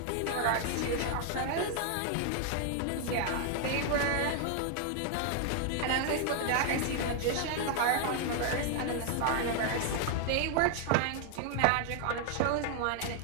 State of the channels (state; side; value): different; both; correlation 0.00